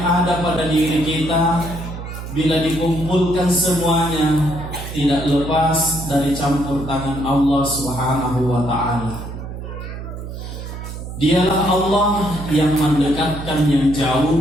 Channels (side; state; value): right; noise; hum, 9 dB below the sound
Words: ada pada diri kita, bila dikumpulkan semuanya, tidak lepas dari campur tangan Allah Subhanahu wa Ta'ala. Dialah Allah yang mendekatkan yang jauh